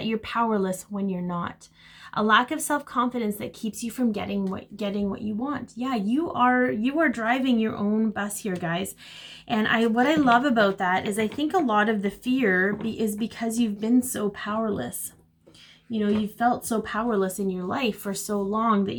you're powerless when you're not. A lack of self-confidence that keeps you from getting what you want. Yeah, you are driving your own bus here, guys. And what I love about that is I think a lot of the fear is because you've been so powerless. You know, you've felt so powerless in your life for so long that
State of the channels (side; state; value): both; identical; correlation 1.00